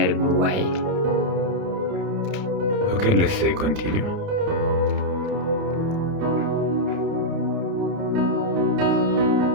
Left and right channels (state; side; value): late; left; 30 ms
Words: bit why. Okay, let's say continue.